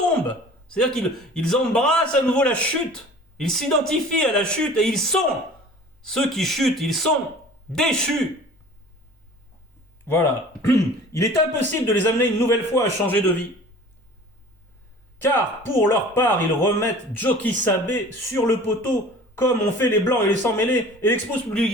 C'est-à-dire qu'ils embrassent à nouveau la chute. Ils s'identifient à la chute et ils sont ceux qui chutent, ils sont déchus. Voilà. Il est impossible de les amener une nouvelle fois à changer de vie. Car pour leur part, ils remettent Joki Sabé sur le poteau, comme ont fait les blancs et les sans-mêlés, et l'exposent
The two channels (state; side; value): normal; both; correlation 0.44